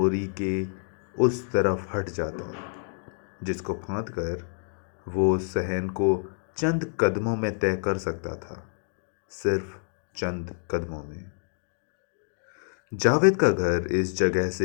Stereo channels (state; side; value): silent; right; digital silence